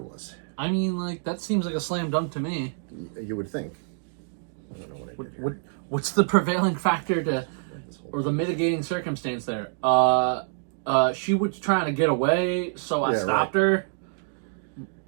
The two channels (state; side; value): silent; left; digital silence